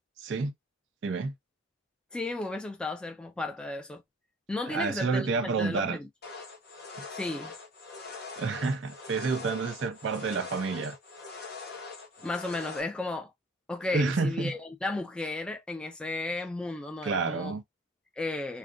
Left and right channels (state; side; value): normal; both; correlation 0.52